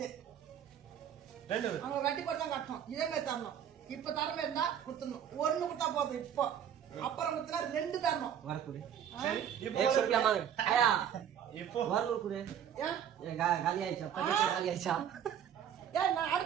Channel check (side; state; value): left; quieter; 9.2 dB